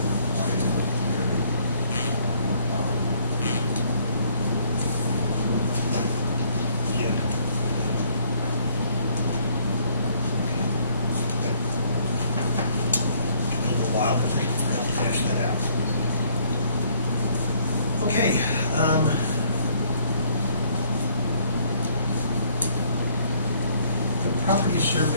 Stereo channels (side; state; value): both; inverted; correlation -0.64